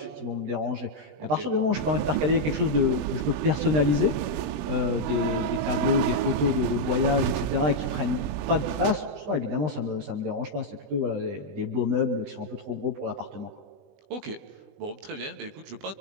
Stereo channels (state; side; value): late; left; 20 ms